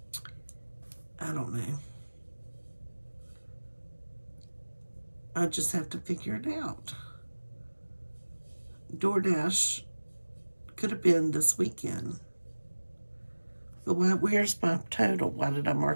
I don't know. I just have to figure it out. DoorDash could have been this weekend. But where's my total? Why did I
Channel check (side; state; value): both; inverted; correlation -1.00